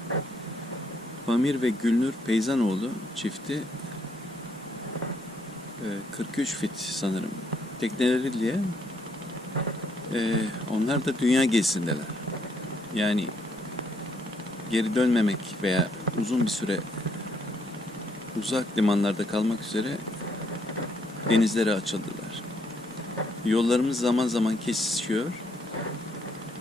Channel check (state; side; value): normal; both; correlation 0.72